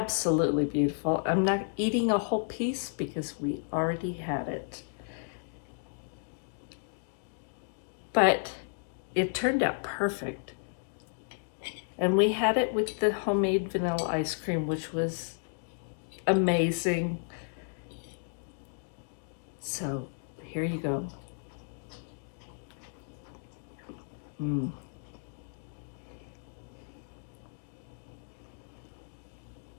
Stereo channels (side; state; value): right; silent; digital silence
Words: beautiful. I'm not eating a whole piece because we already had it. But it turned out perfect. And we had it with the homemade vanilla ice cream, which was amazing. So here you go.